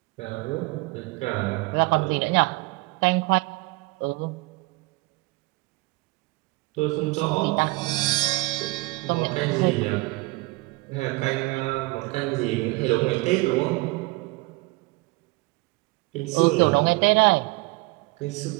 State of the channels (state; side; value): quieter; left; 24.0 dB